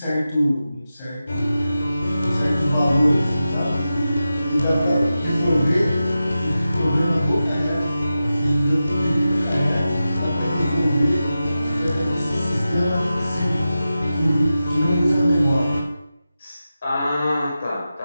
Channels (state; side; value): inverted; both; correlation -0.93